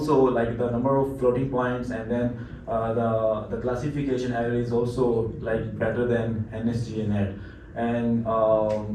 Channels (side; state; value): both; identical; correlation 1.00